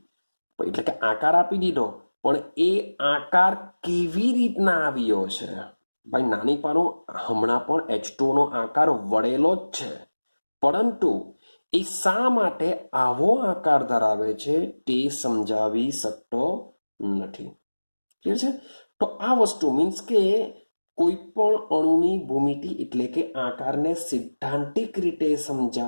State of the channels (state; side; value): inverted; both; correlation -1.00